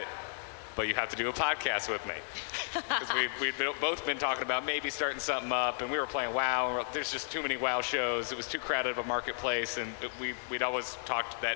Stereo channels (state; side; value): silent; right; digital silence